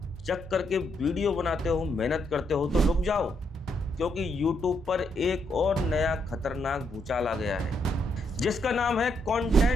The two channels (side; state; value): both; normal; correlation 0.76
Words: जग करके वीडियो बनाते हो, मेहनत करते हो, तो रुक जाओ, क्योंकि YouTube पर एक और नया खतरनाक भूचाल आ गया है जिसका नाम है